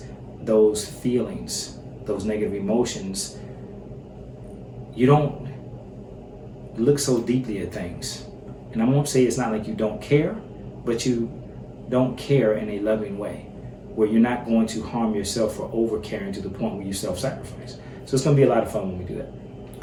those feelings, those negative emotions, you don't look so deeply at things. And I won't say it's not like you don't care, but you don't care in a loving way, where you're not going to harm yourself for over caring to the point where you self-sacrifice. So it's going to be a lot of fun when we do that.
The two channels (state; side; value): identical; both; correlation 1.00